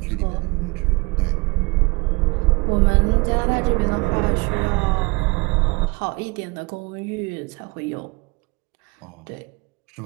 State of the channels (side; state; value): left; quieter; 26.3 dB